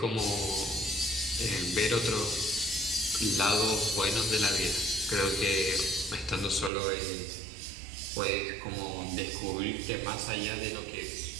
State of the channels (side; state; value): left; drops out; at 6.7 s